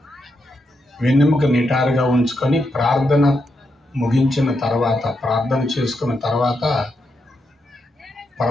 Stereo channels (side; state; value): both; normal; correlation 0.83